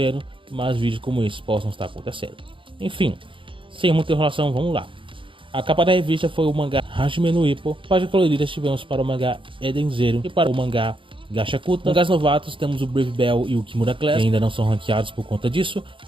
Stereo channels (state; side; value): late; left; 0.25 ms